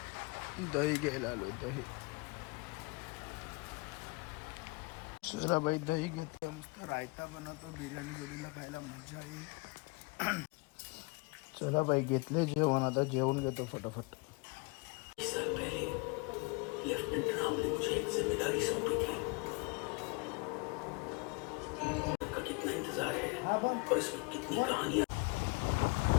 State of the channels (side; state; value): right; quieter; 28.8 dB